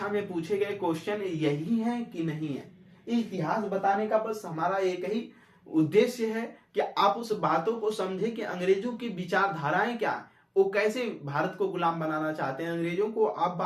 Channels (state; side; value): identical; both; correlation 1.00